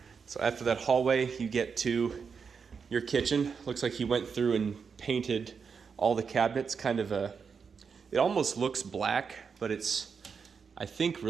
So after that hallway, you get to your kitchen. Looks like he went through and painted all the cabinets. It almost looks black, but it's, I think,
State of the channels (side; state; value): left; quieter; 5.9 dB